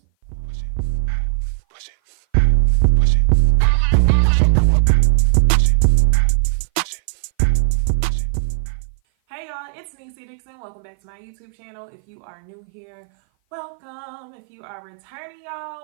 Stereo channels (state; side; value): silent; left; 58 dB below the other